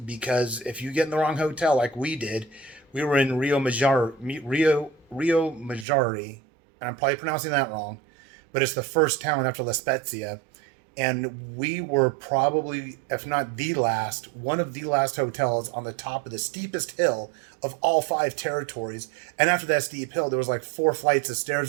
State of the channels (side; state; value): left; drops out; at 5.9 s